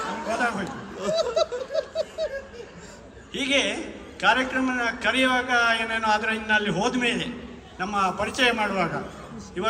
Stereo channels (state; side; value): identical; both; correlation 1.00